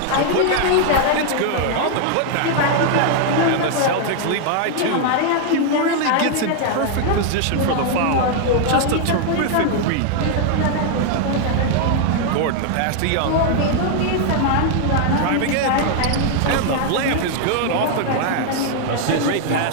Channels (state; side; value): different; both; correlation 0.00